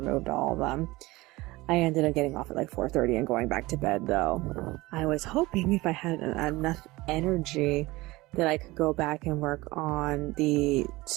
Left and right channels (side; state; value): left; quieter; 20.5 dB